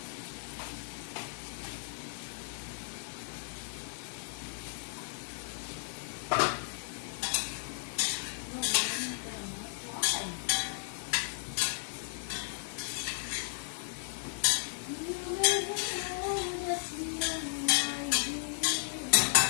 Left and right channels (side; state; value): right; silent; digital silence